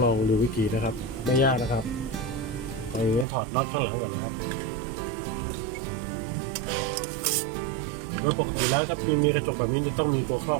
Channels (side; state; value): left; drops out; at 3.2 s